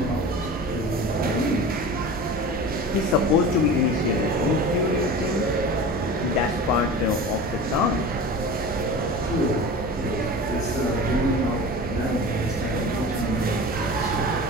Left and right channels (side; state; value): both; normal; correlation 0.35